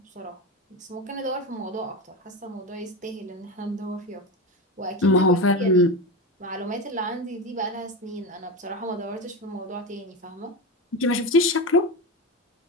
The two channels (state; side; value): normal; both; correlation 0.20